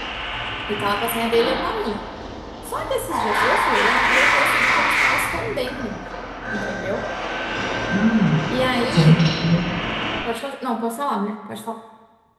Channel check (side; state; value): both; identical; correlation 1.00